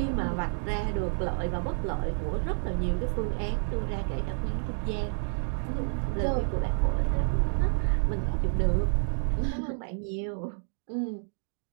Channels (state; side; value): silent; left; digital silence